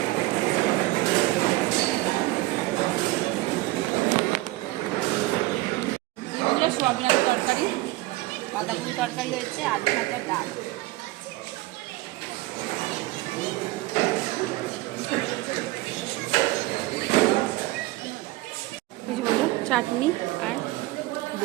সোয়াবিনের তরকারি, বাঁধাকপি তরকারি হয়েছে, আলু ভাজা, ডাল। চাটনি আর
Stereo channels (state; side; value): quieter; left; 19.5 dB